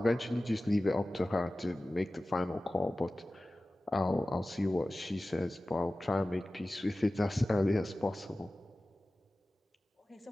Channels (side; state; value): both; normal; correlation 0.96